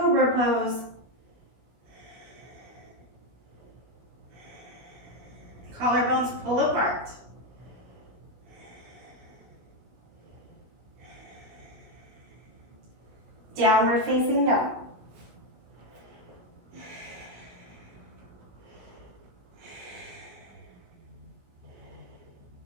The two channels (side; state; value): left; late; 16 ms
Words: pose. Collarbones pull apart. Downward facing dog.